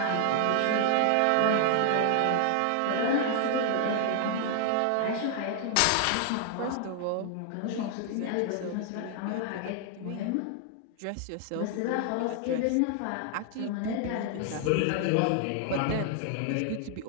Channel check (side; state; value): both; different; correlation 0.00